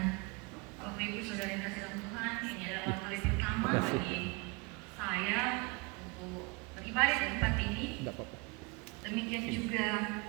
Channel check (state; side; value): quieter; left; 28.2 dB